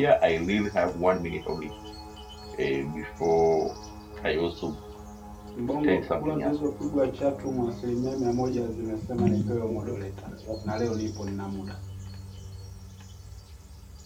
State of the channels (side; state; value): both; identical; correlation 1.00